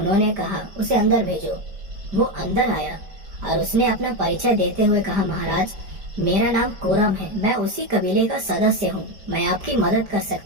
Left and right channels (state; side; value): late; left; 5.0 ms